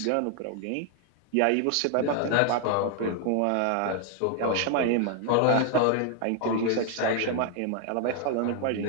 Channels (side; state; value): both; different; correlation 0.00